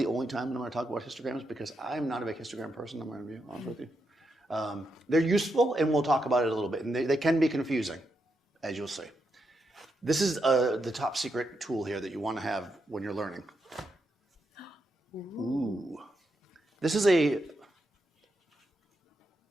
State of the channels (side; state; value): both; normal; correlation 0.83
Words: only time that I'm going to talk about histograms because I'm not a big histogram person, I'm going to be honest with you. They're useful and we'll talk about it a little bit. And they can be confusing, as you'll see. This is the top secret tool here that you want to have when you're learning. Ooh. This is a